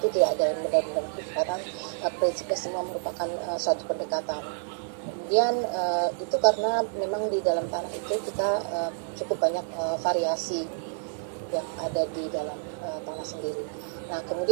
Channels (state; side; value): silent; left; digital silence